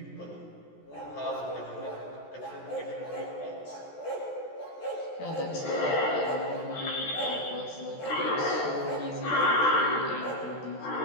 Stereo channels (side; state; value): right; late; 14 ms